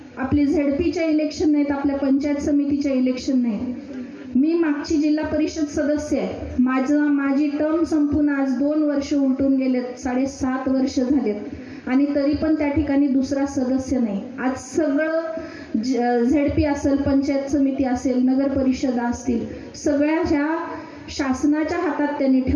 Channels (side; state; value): both; identical; correlation 1.00